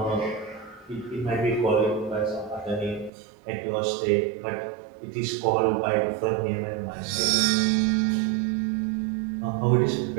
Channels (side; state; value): left; drops out; at 3.1 s